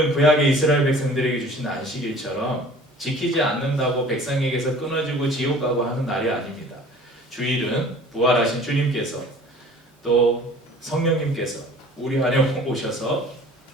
구약의 이스라엘 백성들에게 주신 안식일처럼 지키지 않는다고 백성에게서 끊어지고 지옥 가고 하는 날이 아닙니다. 주일은 부활하신 주님께서 또 성령님께서 우리 안에 오셔서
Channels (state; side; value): normal; both; correlation 0.48